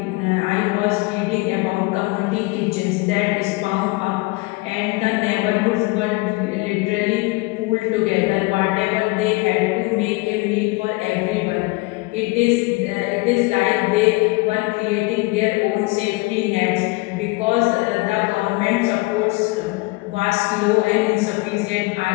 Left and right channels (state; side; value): quieter; right; 24.2 dB